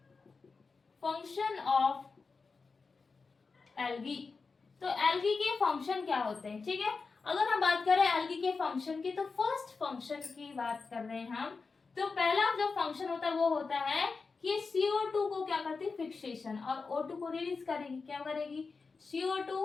फंक्शन ऑफ एल्गी। तो एल्गी के फंक्शन क्या होते हैं। ठीक है, अगर हम बात करें एल्गी के फंक्शन की, तो फर्स्ट फंक्शन की बात कर रहे हैं हम। तो पहला जो फंक्शन होता है वो होता है कि CO2 को क्या करती है, फिक्सेशन, और O2 को रिलीज करेगी। क्या करेगी,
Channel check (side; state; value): right; quieter; 4.5 dB